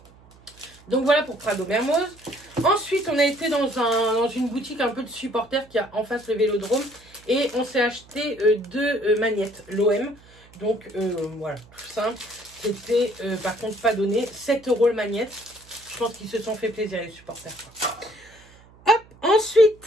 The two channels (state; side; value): noise; right; hum, 26 dB below the sound